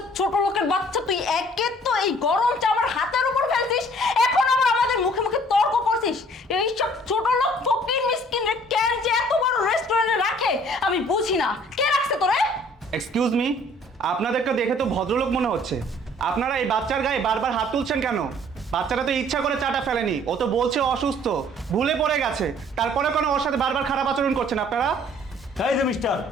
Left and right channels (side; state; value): both; normal; correlation 0.56